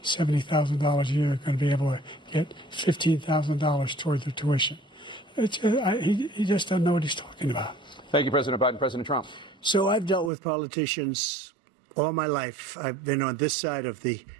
$70,000 a year is going to be able to get $15,000 toward their tuition. He just doesn't know what he's talking about. Thank you, President Biden. President Trump. So I've dealt with politicians all my life. I've been on this side of the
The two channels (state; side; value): drops out; left; at 10.3 s